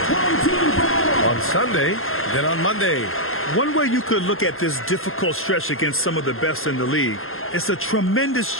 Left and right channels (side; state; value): right; late; 0.61 ms